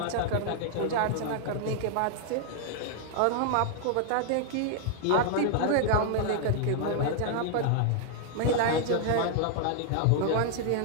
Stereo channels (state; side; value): different; both; correlation -0.01